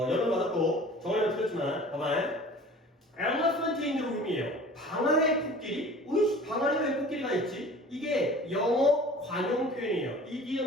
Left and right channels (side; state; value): both; normal; correlation 0.44